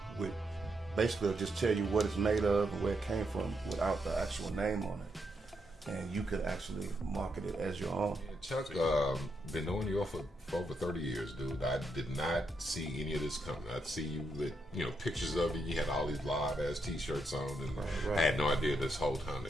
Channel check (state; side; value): normal; both; correlation 0.80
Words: with basically just tell you what it's made of and where it came from without the actual name on it. And you could actually market it as your own. Yeah, Chuck, been knowing you for over 30 years, dude. I did not see any of this coming. I'd see you with, pictures of you. You had all these live ass t-shirts on, and I had no idea this whole time